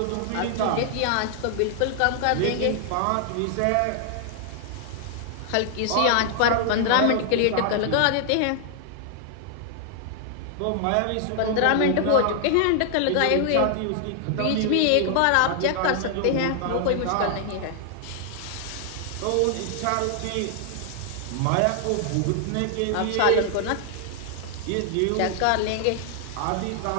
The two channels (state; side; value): different; both; correlation 0.00